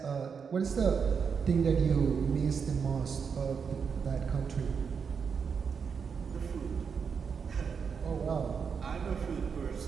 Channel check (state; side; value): quieter; left; 6.2 dB